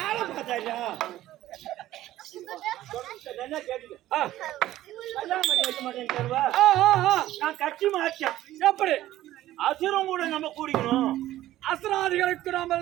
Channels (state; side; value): quieter; left; 14.4 dB